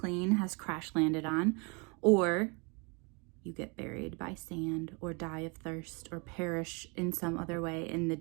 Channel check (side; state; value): left; quieter; 31.7 dB